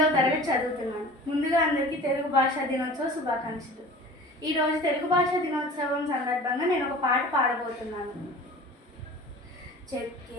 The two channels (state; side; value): normal; both; correlation 0.41